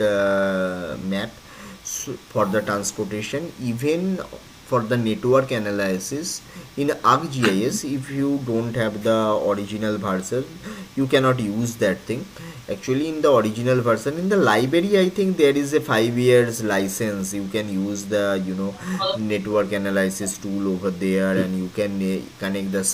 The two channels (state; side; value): identical; both; correlation 1.00